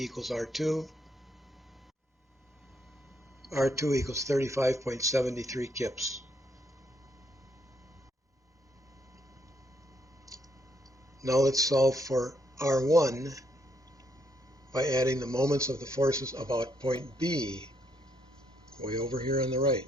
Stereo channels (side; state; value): both; normal; correlation 0.74